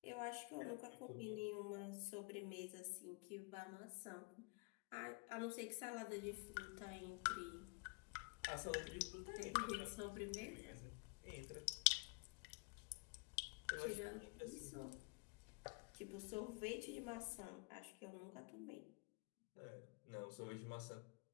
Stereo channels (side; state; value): right; quieter; 29.7 dB